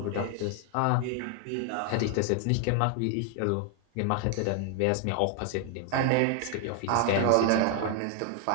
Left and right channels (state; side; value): different; both; correlation 0.00